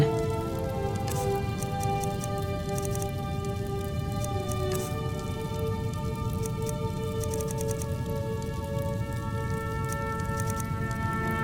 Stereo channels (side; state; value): both; identical; correlation 1.00